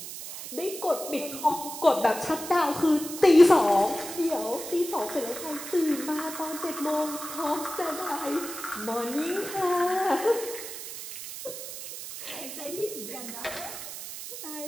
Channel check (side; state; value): right; noise; hiss, 10 dB below the sound